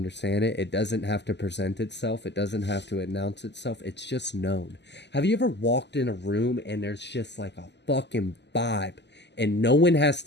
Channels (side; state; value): right; late; 0.50 ms